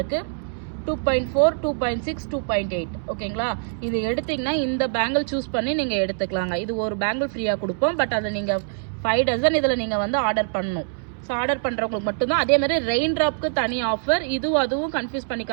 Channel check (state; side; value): silent; left; 63 dB below the other